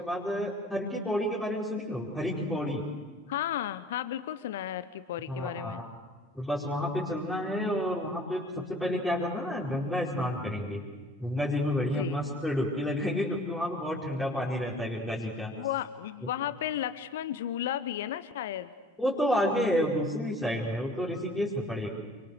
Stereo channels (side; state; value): both; normal; correlation 0.49